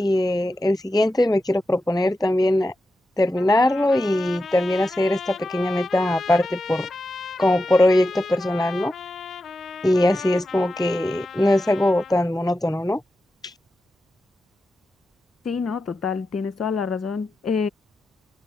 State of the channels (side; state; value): both; normal; correlation 0.90